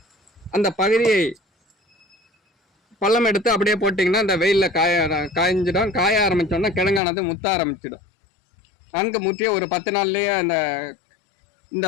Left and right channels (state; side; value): drops out; right; at 7.0 s